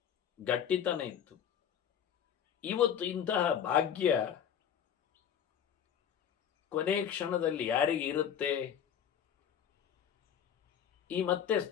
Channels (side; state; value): right; quieter; 8.8 dB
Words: ಗಟ್ಟಿತನ ಇತ್ತು. ಇವತ್ತು ಇಂತಹ ಭಾಗ್ಯ ಕೊನೆ ಕ್ಷಣದಲ್ಲಿ ಯಾರಿಗೆ ಇರುತ್ತೆ? ಈ ಮತ್ತೆ